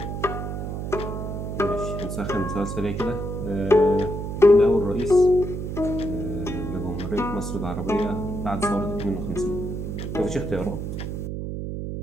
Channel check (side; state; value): right; noise; hum, 5 dB below the sound